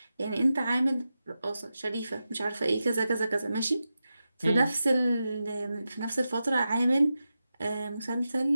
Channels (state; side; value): inverted; both; correlation -0.91